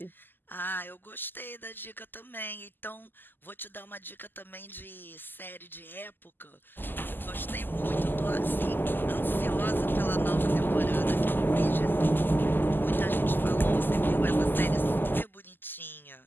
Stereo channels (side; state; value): right; late; 0.092 ms